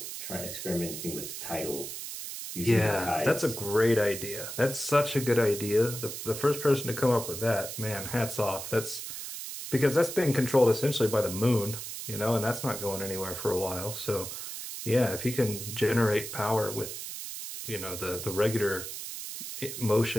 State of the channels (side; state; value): right; noise; hiss, 8 dB below the sound